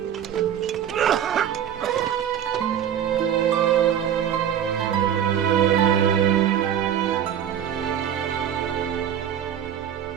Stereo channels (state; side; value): quieter; left; 9.5 dB